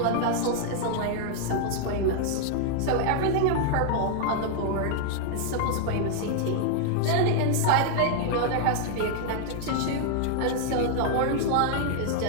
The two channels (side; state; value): both; different; correlation 0.00